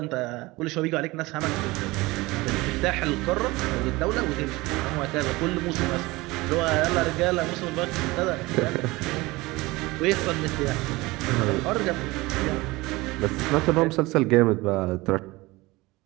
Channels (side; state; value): left; quieter; 21.3 dB